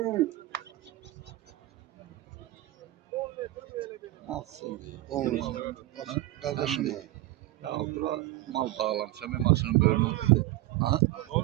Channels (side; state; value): left; quieter; 17.0 dB